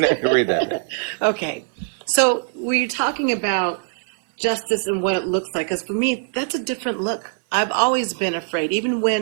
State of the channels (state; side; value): silent; left; digital silence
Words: read that. Okay. So we're talking about justice and what it looks like. Because for me, that's a different look. I've always been afraid. Even